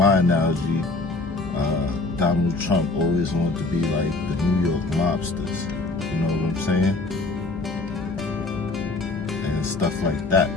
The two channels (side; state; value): right; quieter; 3.3 dB